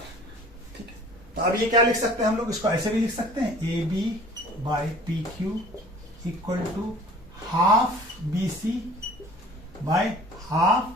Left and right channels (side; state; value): both; normal; correlation 0.48